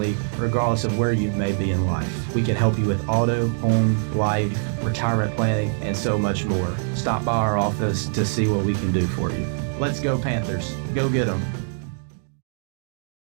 regardless of where you may be in life. We can help you with auto, home, life, retirement planning, and so much more. Stop by our office to see what we can do for you. Let's go Panthers. Go get 'em.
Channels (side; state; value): left; silent; digital silence